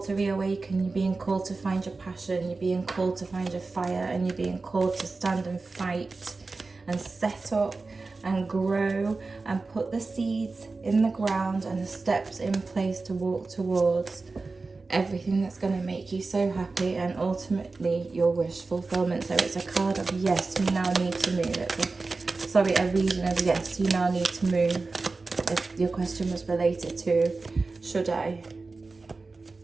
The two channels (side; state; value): left; quieter; 3.8 dB